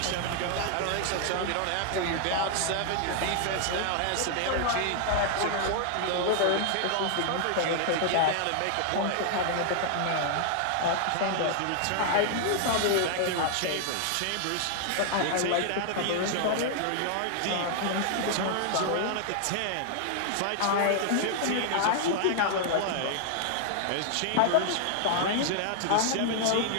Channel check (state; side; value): different; both; correlation -0.01